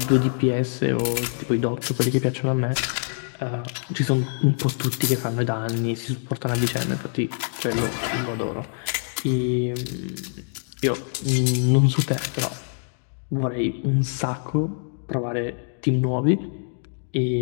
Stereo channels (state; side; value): silent; right; digital silence